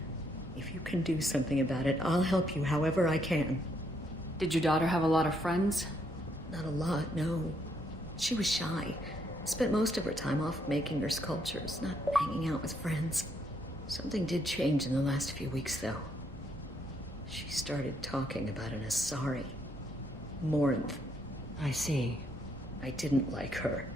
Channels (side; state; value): both; normal; correlation 0.73